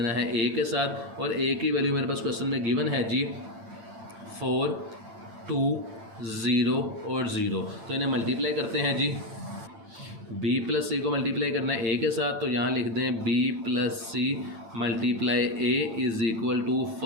है A के साथ, और A की वैल्यू मेरे पास क्वेश्चन में गिवन है जी 4, 2, 0 और 0। तो इन्हें मल्टीप्लाई करते हैं जी। B प्लस C को मल्टीप्लाई करना है A के साथ, तो यहाँ लिख दें B plus C multiply A is equal to,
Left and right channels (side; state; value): left; late; 8.9 ms